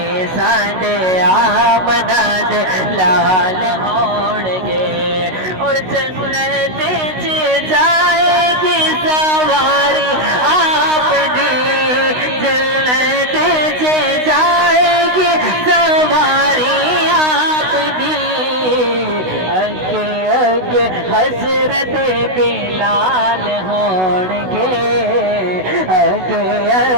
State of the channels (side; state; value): left; late; 16 ms